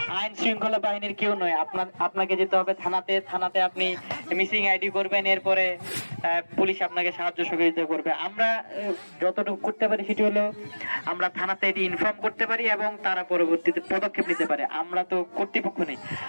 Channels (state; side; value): inverted; both; correlation -1.00